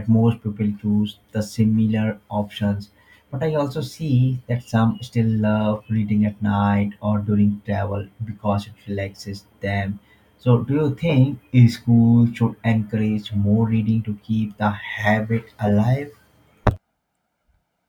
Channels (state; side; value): identical; both; correlation 1.00